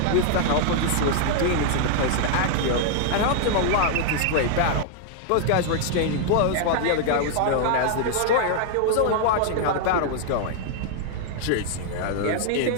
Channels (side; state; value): both; different; correlation -0.01